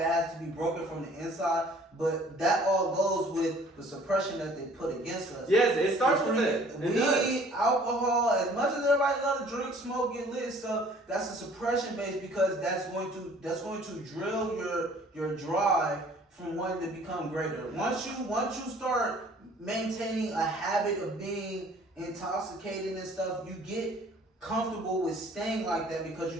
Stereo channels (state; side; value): normal; both; correlation 0.54